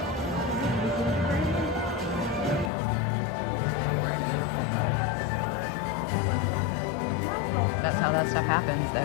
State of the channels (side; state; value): right; drops out; at 2.7 s